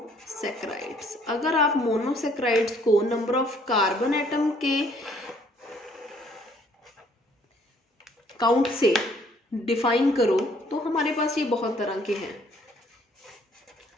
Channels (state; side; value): normal; both; correlation 0.62